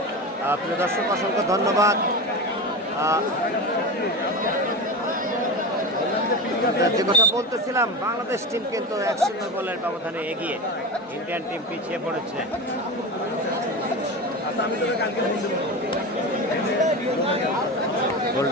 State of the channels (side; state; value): both; normal; correlation 0.25